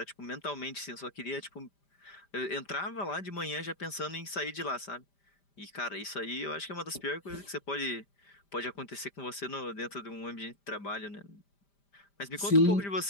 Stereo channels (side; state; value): right; late; 5.0 ms